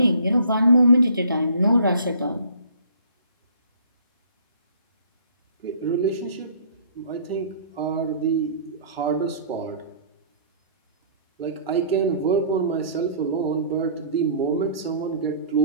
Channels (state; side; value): inverted; both; correlation -0.52